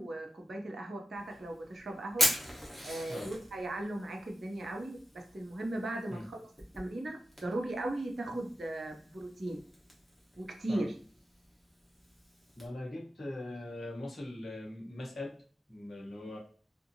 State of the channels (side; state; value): both; normal; correlation 0.91